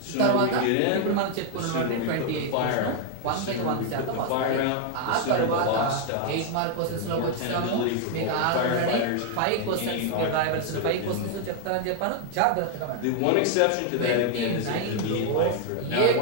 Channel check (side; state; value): both; different; correlation 0.00